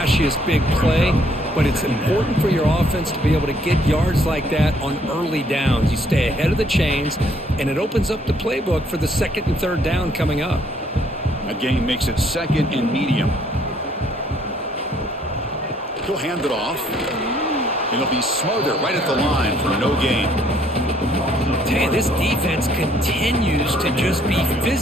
big play, but it's important for your offense to be able to get yards like that on early downs. You stay ahead of the chains, and it opens up the playbook for the second and third down coming up. That gain makes it second and medium. He'll hand it off, and he'll be smothered right at the line for no gain. Tell you, this defense continues to just be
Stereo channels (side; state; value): both; normal; correlation 0.65